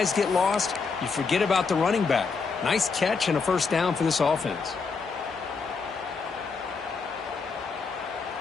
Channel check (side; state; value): right; quieter; 4.9 dB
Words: get lost. You forget about the running back. Nice catch and a first down for this offense.